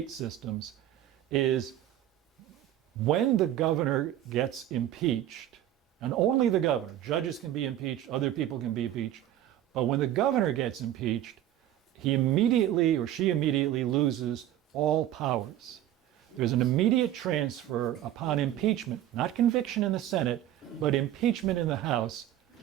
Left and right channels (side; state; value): left; quieter; 12.3 dB